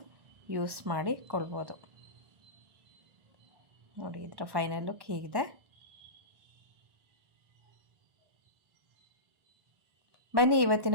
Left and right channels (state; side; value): late; left; 1.1 ms